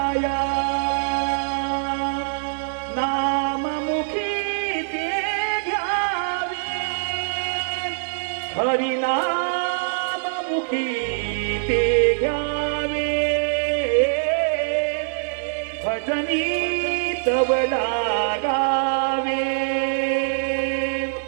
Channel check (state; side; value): silent; left; digital silence